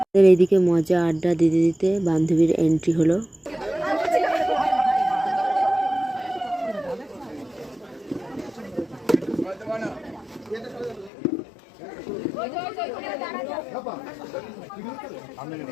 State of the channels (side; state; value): right; drops out; at 11.1 s